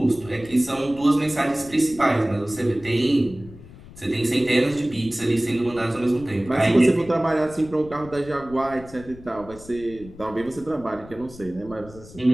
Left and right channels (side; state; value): left; noise; rumble, 18 dB below the sound